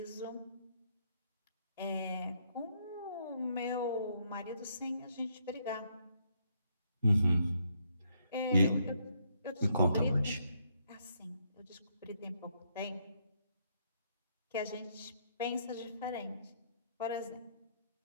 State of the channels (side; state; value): both; inverted; correlation -0.73